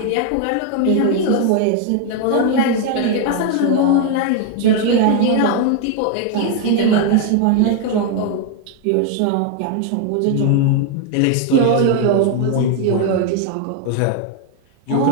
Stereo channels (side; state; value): both; different; correlation 0.00